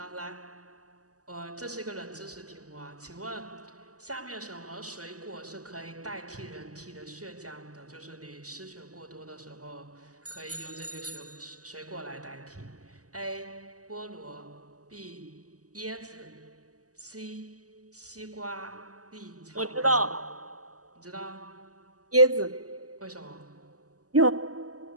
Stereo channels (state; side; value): late; left; 0.67 ms